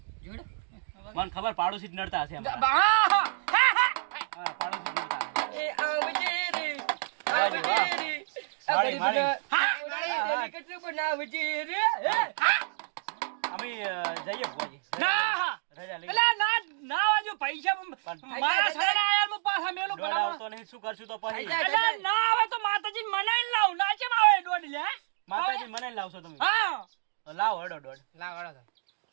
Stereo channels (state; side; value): silent; left; digital silence